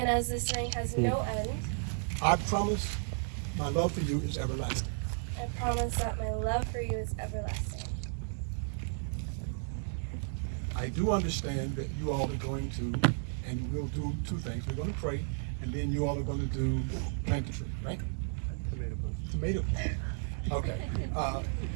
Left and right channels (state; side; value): silent; left; digital silence